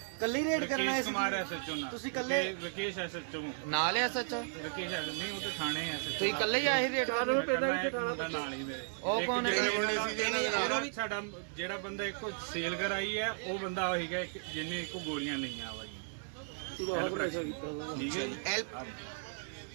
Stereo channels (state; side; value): silent; left; digital silence